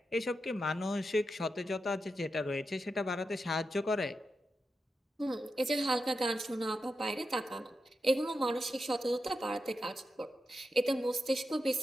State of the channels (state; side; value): normal; both; correlation 0.88